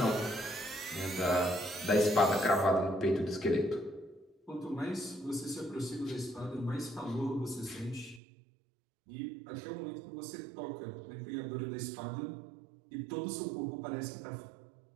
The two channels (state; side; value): drops out; left; at 8.2 s